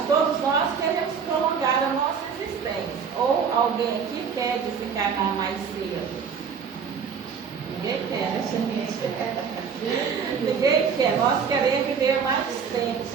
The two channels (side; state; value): left; quieter; 6.5 dB